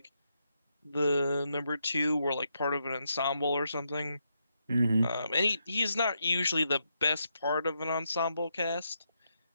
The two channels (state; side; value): inverted; both; correlation -0.81